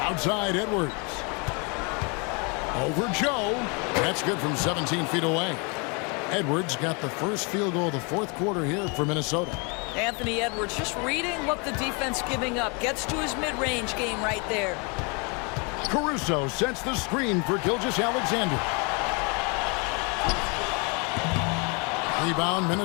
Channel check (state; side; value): quieter; right; 32.4 dB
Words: Outside Edwards. Over Joe. That's good from 17 feet away. Edwards got the first field goal of the 4th quarter here for Minnesota. Anthony Edwards just reading what the defense giving up. Gets to his mid-range game right there. Caruso sets the screen for Gilgeous-Alexander. Rebound,